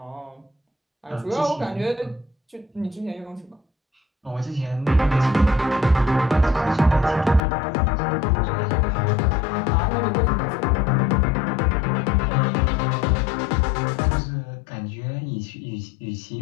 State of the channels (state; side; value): drops out; right; at 7.4 s